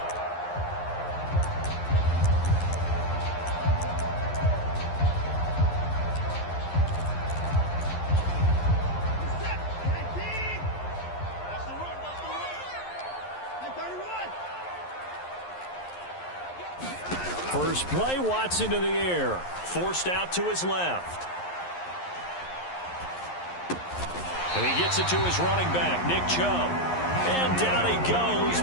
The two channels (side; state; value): right; late; 11 ms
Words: First play, Watson to the air. Forced out to his left. And he gets it to his running back, Nick Chubb. And down he goes,